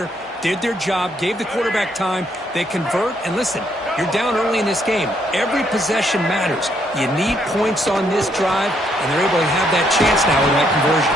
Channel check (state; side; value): normal; both; correlation 0.72